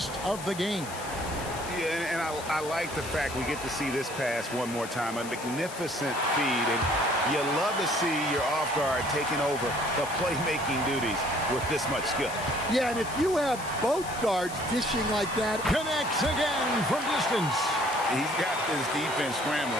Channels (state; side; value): noise; left; hiss, 13 dB below the sound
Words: of the game. Yeah, and I like the fact we get to see this pass one more time. A magnificent feed, and you love to see your off guard taking over the playmaking duties with this much skill. Yeah, and if you have both guards dishing like that. Connects again from distance. He's got this defense